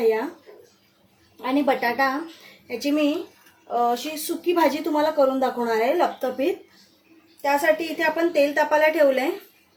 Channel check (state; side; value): identical; both; correlation 1.00